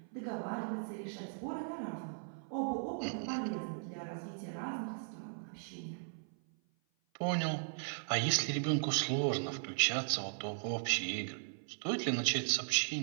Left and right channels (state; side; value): silent; left; 53 dB below the other